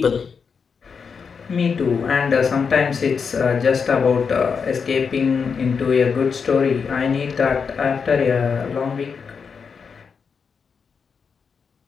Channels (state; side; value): quieter; right; 5.9 dB